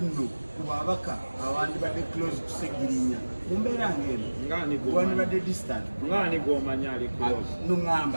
nno kubabaka abandi bade close to Segirinya mumbera ngene ngani go wani bade distant ngani go manyali close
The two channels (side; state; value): both; inverted; correlation -1.00